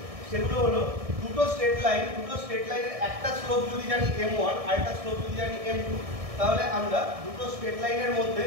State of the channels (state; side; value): late; left; 1.6 ms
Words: সেগুলো হলো দুটো স্ট্রেট লাইনের একটা স্লোপ যদি জানি m1 আর একটা স্লোপ যদি জানি m2, তাহলে আমরা দুটো স্ট্রেট লাইনের মধ্যে